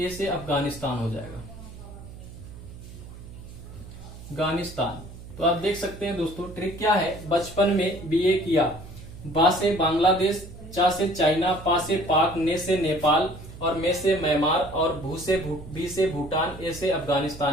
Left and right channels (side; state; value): right; noise; hum, 15 dB below the sound